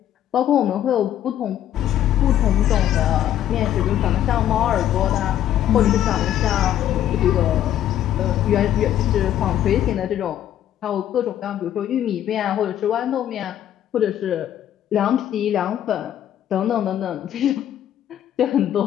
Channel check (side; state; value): right; quieter; 11.3 dB